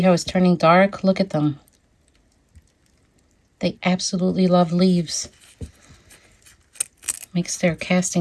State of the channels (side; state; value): both; identical; correlation 1.00